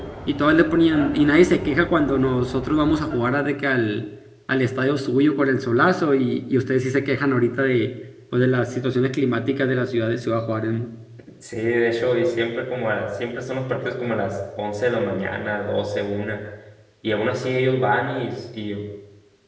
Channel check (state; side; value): identical; both; correlation 1.00